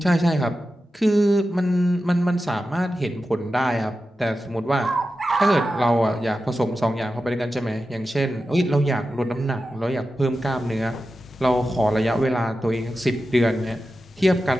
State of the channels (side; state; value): both; normal; correlation 0.92